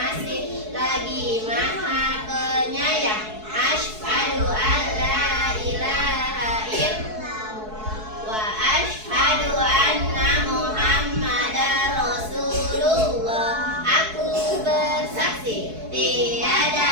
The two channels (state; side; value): late; left; 4.7 ms